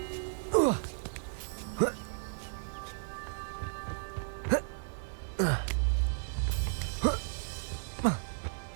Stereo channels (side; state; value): left; silent; digital silence